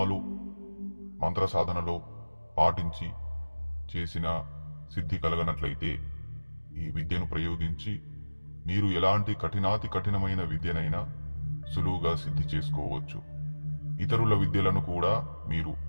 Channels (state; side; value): inverted; both; correlation -1.00